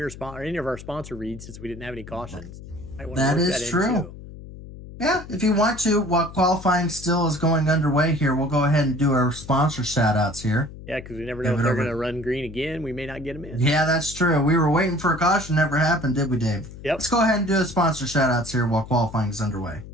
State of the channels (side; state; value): left; noise; hum, 15 dB below the sound